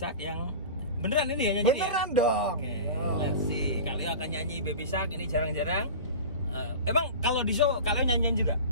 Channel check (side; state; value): both; inverted; correlation -0.33